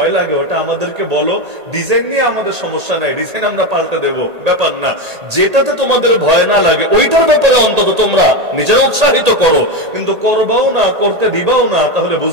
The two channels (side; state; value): left; late; 1.8 ms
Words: লাগে ওটা আমাদেরকে বলো, ডিজাইন নিয়ে আমাদের সমস্যা নাই, ডিজাইন আমরা পাল্টে দেব, ব্যাপার না। যেটাতে তোমাদের ভয় না লাগে ওইটার ব্যাপারে অন্তত তোমরা নিজেরা উৎসাহিত করো, কিন্তু করবাও না, করতে দিবাও না, তাহলে